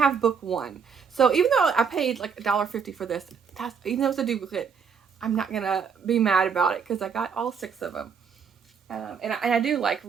book 1. So even though I paid like $1.50 for this, even though it's a duplicate, I'm not gonna be mad about it because I got all 6 of them. And I do like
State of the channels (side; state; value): left; quieter; 6.3 dB